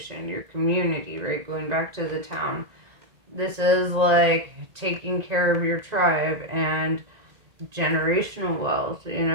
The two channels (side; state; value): left; late; 1.9 ms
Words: your community, right? Going back to the town. This is like taking care of your tribe and generational wealth. You